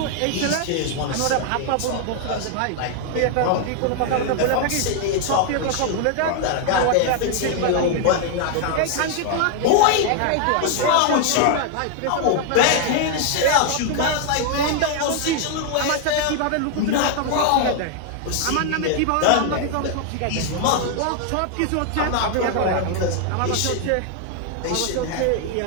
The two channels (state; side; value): different; both; correlation 0.00